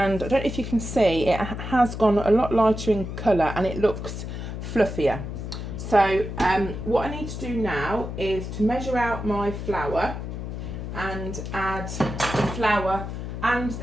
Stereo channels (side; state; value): left; noise; hum, 6 dB below the sound